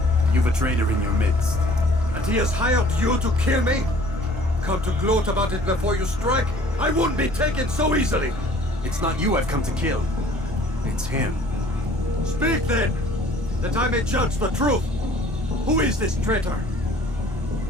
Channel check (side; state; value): both; normal; correlation 0.53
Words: You've a traitor in your midst. And he has hired you to kill me? Come to gloat about it before you strike? I won't be taken so easily! It's not you I've come to kill. It's him. Speak then! That I may judge the truth! Who is this traitor?